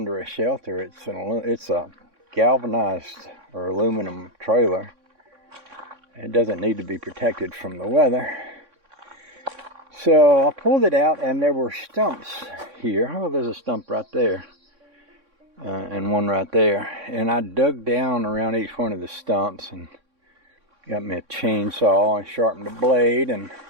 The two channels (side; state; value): left; late; 3.6 ms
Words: a shelter. It's a galvanized or aluminum trailer. It doesn't need to be protected from the weather. So I pulled it out and there were stumps here. Oh, there's a stump right there. And one right there. And I dug down around each one of the stumps and got me a chainsaw and sharpened the blade and